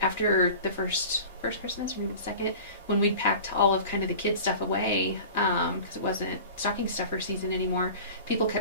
after the first Christmas, or maybe the second, when we packed all of kind of the kids stuff away, because it wasn't stocking stuffer season anymore, people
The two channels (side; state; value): both; inverted; correlation -0.38